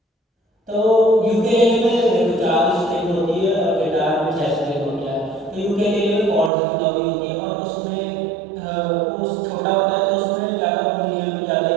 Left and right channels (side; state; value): left; drops out; at 6.5 s